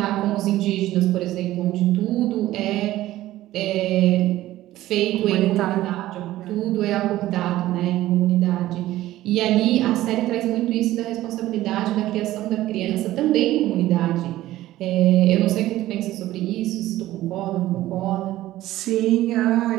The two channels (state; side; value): quieter; left; 15.3 dB